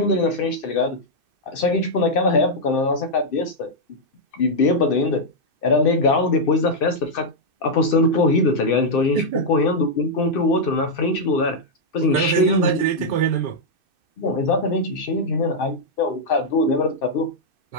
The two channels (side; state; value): right; late; 2.6 ms